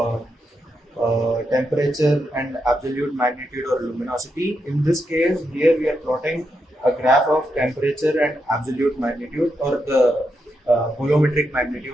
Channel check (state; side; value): normal; both; correlation 0.84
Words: temperature and absolute magnitude or luminosity. In this case, here we are plotting a graph of temperature and absolute magnitude, or the bolometric